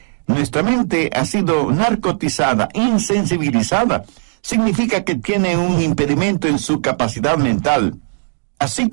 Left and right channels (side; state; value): left; silent; digital silence